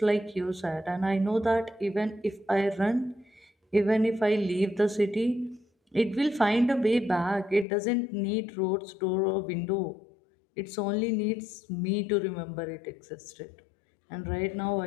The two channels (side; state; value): right; drops out; at 7.7 s